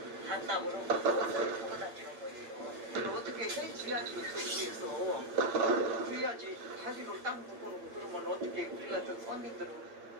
반납으로 버스를 타고 다니는 거예요. 어떻게 해줘야지 도시에서 그래야지 다리로 땅 묶어놓고 그러면 어떻게 우리 같은 손님들은.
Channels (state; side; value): late; left; 8.7 ms